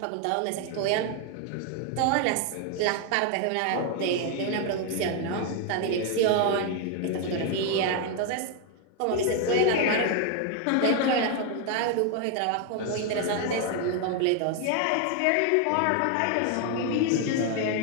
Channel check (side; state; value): both; different; correlation 0.01